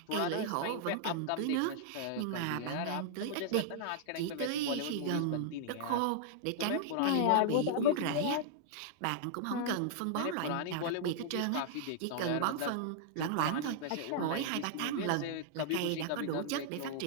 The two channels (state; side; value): different; both; correlation -0.01